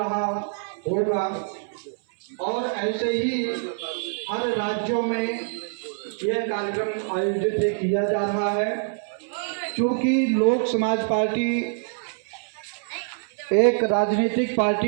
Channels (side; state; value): left; silent; 62 dB below the other